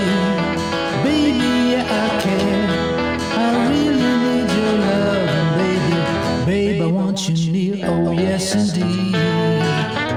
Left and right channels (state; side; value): identical; both; correlation 1.00